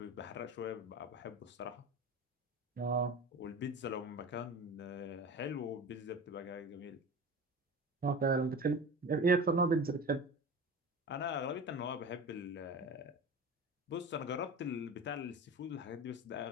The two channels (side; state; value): both; normal; correlation 0.32